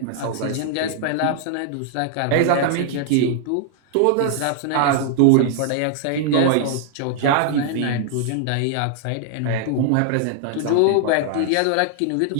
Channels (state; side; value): different; both; correlation -0.01